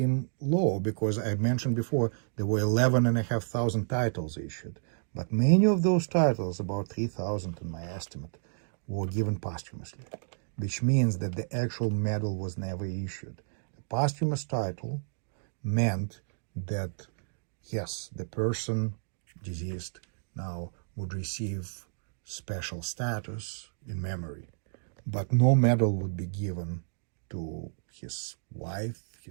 low because I mentioned before there were 11,500 titles issued. But many of those titles, about 3,000 in my estimate, were given posthumously, which means that the actual medal was never issued. The posthumous title meant that, yes, the person deceased now would receive special status in memory, but no medal would be given to his wife,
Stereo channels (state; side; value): silent; left; digital silence